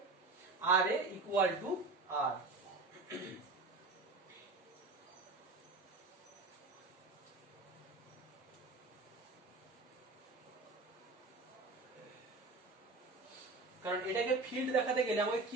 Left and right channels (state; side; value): quieter; left; 3.5 dB